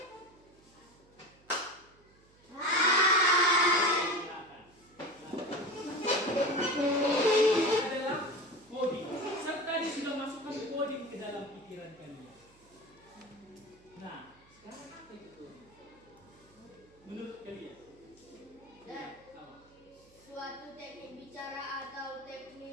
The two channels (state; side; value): noise; right; hum, 29 dB below the sound